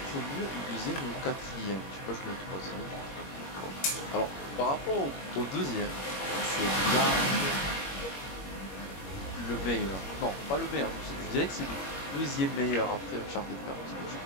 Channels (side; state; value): right; late; 21 ms